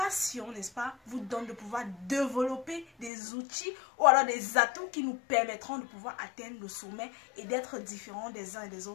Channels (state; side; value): drops out; right; at 3.1 s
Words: n'est-ce pas, vous donne de pouvoir développer des outils ou alors des atouts qui nous permettront de pouvoir atteindre le sommet et d'être différents des uns et des